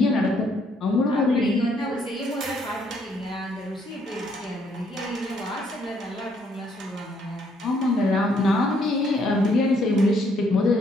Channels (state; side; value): normal; both; correlation 0.69